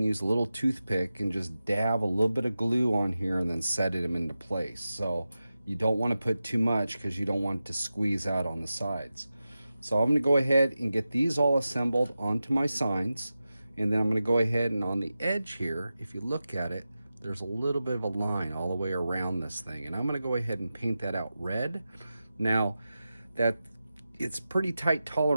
use a little toothpick and just dab a little bit of glue on here and then set them into place. So you don't want to put too much because you don't want it to squeeze out on the sides. So I'm going to go ahead and get these all assembled onto my signs, and then I'm going to go ahead and on the edge here, if you look at it, there's a little bit of a line all the way around this thing, and I'm going to go ahead and paint that out red. Now that it's pretty tight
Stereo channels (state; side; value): inverted; both; correlation -0.93